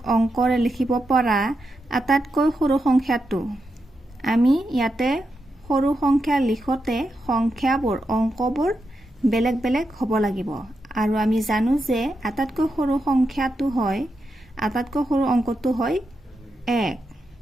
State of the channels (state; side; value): normal; both; correlation 0.86